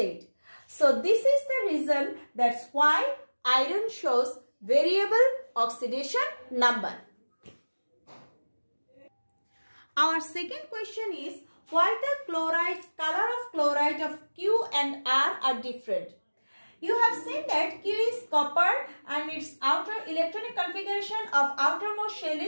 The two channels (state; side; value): inverted; both; correlation -1.00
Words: So this is the reason that's why iron shows variable oxidation number. Our second question is why the color of chloride of Q and R are different. You have seen that Q is copper and its outer electronic configuration of outermost shell